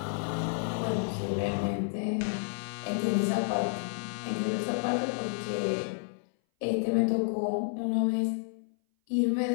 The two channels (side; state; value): right; silent; 57 dB below the other